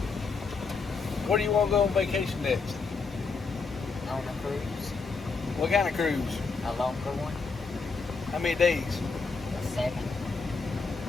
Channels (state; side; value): quieter; right; 4.5 dB